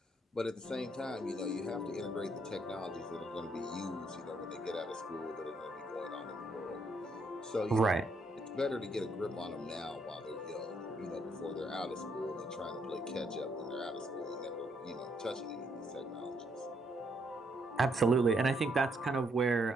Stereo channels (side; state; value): both; normal; correlation 0.73